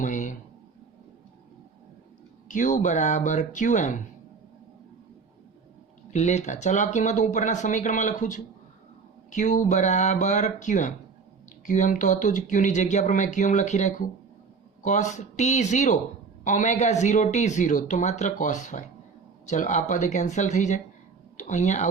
q બરાબર qm લેતા, ચલો આ કિંમત હું ઉપરના સમીકરણમાં લખું છું. q બરાબર qm, qm તો હતું જ, q ની જગ્યા પર મેં qm લખી રાખ્યું. cos t0 ω0t0 તો માત્ર cos phi. ચલો આ પદ કેન્સલ થઈ જાય તો અહીંયા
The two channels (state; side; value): quieter; left; 5.1 dB